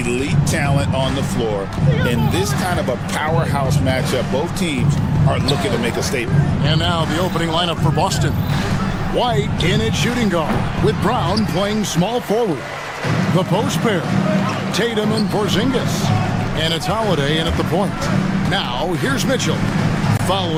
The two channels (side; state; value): both; identical; correlation 1.00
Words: talent on the floor. In this kind of a powerhouse matchup, both teams are looking to make a statement. And now the opening lineup for Boston. White in at shooting guard, with Brown playing small forward. The post pair, Tatum and Porzingis. And it's Holiday in at the point. Now, here's Mitchell.